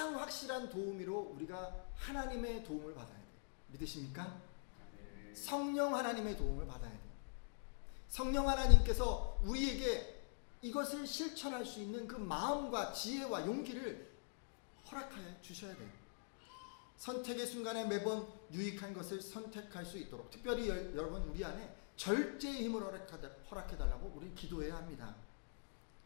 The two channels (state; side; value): silent; right; digital silence